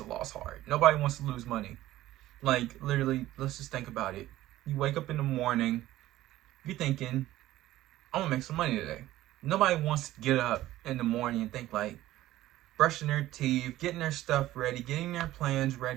loss hard. Nobody wants to lose money. Like, literally, let's just think about it. You wake up in the morning, you're thinking, I'm gonna make some money today. Nobody wants to get up in the morning and think like brushing their teeth, getting their stuff ready, getting their plans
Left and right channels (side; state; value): left; quieter; 15.2 dB